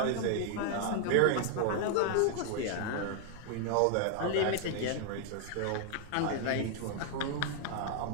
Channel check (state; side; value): different; both; correlation 0.00